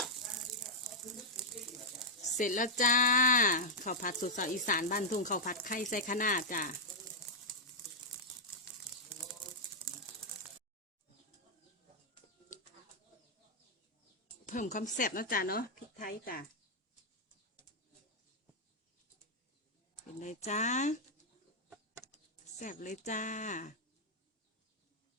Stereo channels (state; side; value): normal; both; correlation -0.05